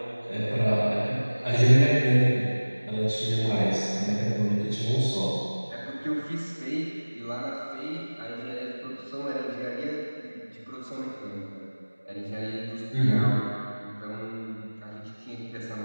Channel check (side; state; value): both; inverted; correlation -1.00